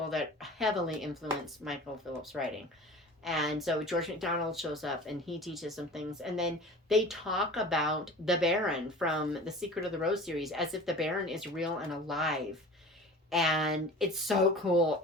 that heavily influenced Michael Phillips' writing. And so George MacDonald shows up, and he teaches some things. And then they talk about the Baron from the Secret of the Rose series, as if the Baron is real and alive. And it's so cool.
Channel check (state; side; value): normal; both; correlation 0.39